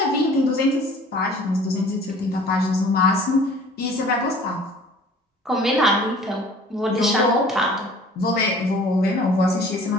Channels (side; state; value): both; normal; correlation 0.49